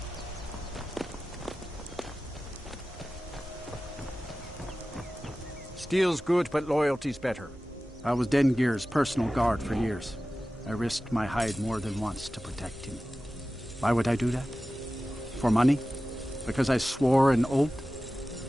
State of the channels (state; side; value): normal; both; correlation 0.95